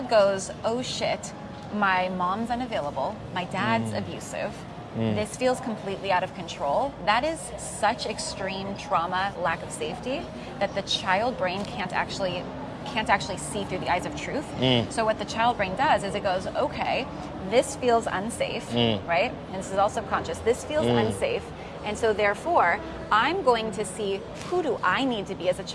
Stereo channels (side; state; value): both; identical; correlation 1.00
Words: goes, oh shit, my mom's unavailable, my dad's abusive, this feels completely out of control, that is such extreme trauma, lack of safety, that the child brain can't actually see through the eyes of truth. So what the child brain does is it goes, okay, this feels unsafe, right? And this is all subconscious. This feels unsafe. And so therefore, I'm going to see, who do I need to be as a